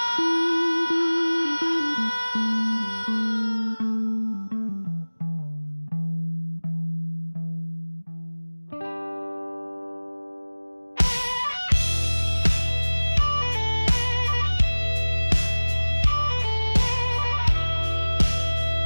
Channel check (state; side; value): inverted; both; correlation -1.00